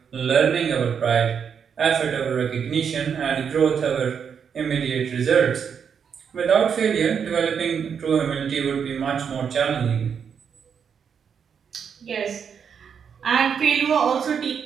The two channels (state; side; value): quieter; left; 7.1 dB